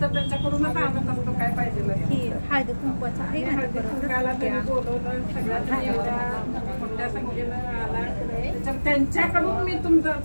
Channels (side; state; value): both; inverted; correlation -1.00